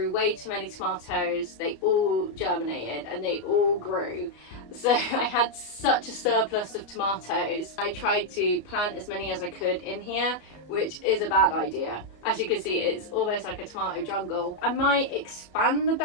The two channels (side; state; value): right; late; 33 ms